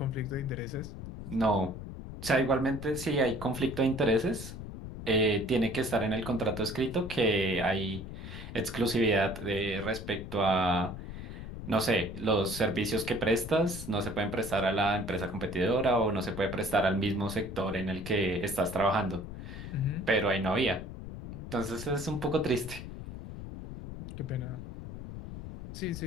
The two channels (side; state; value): left; noise; rumble, 9 dB below the sound